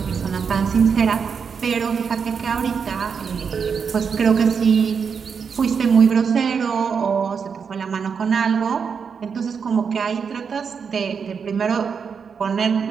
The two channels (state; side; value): quieter; left; 6.3 dB